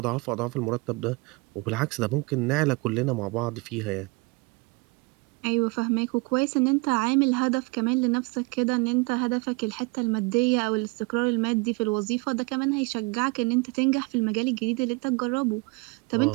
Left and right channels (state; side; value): quieter; left; 27.3 dB